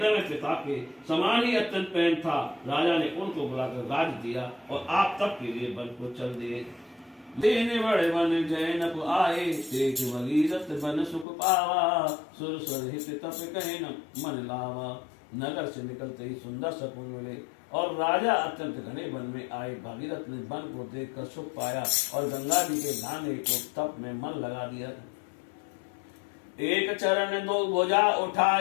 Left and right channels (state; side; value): drops out; right; at 11.2 s